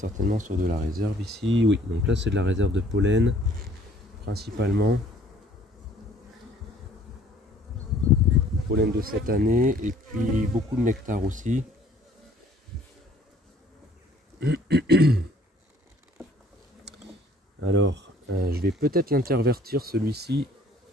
sur de la réserve ici. Oui, donc là c'est de la réserve de pollen principalement. Pollen de cette année et puis beaucoup de nectar aussi. Alors je vais peut-être l'intervertir celui-ci,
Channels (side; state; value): both; normal; correlation 0.57